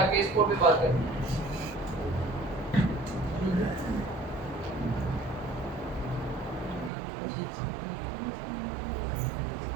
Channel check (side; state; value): left; drops out; at 6.9 s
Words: केस कोड पे बात करें।